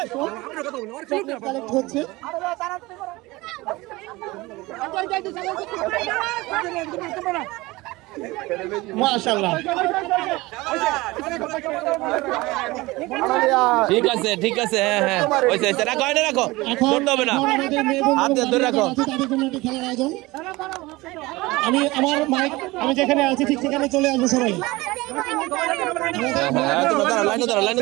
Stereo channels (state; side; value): quieter; left; 21.2 dB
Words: মাশাআল্লাহ ঠিক আছে ঠিক আছে হ্যাঁ হ্যাঁ হয়েছে হয়েছে রাখো এটা রাখো ধরতে হবে না হাত দিয়ে ধরে রাখো তাদের জন্য একটি খেলার আয়োজন আমি আমার মাইক আমি যেখানে আছি ঠিক সেখানে চলে আসবো সবাই লাইনে ধরো লাইনে